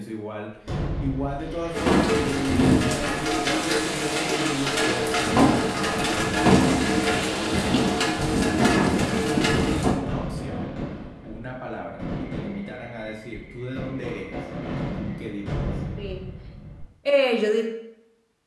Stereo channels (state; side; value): identical; both; correlation 1.00